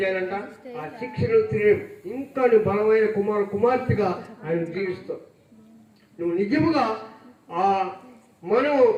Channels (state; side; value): identical; both; correlation 1.00